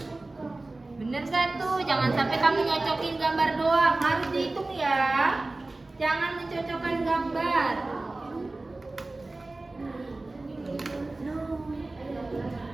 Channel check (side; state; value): left; quieter; 3.0 dB